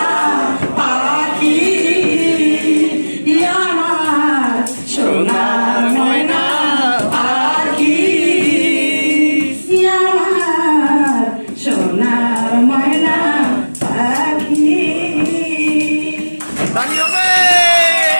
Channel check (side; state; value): both; inverted; correlation -1.00